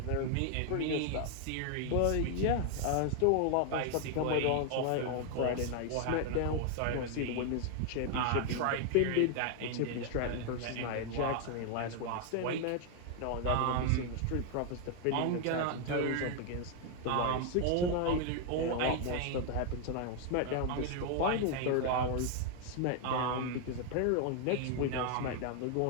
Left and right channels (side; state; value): both; different; correlation 0.00